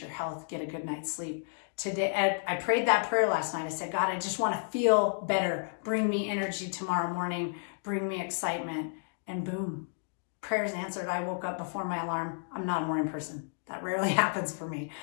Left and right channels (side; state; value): right; silent; digital silence